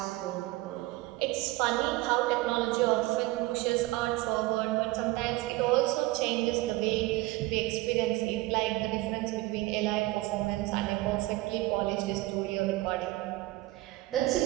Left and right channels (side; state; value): left; quieter; 19.2 dB